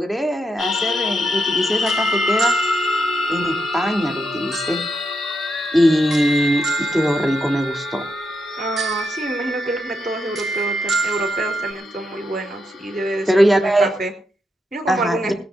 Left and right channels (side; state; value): both; normal; correlation 0.83